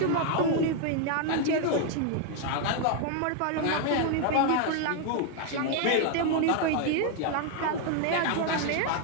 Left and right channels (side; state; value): both; different; correlation 0.00